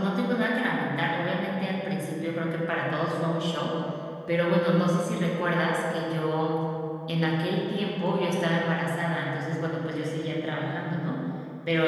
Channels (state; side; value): identical; both; correlation 1.00